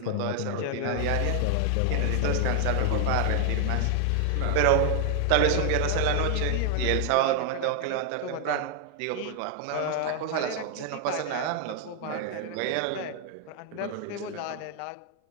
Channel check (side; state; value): both; different; correlation 0.00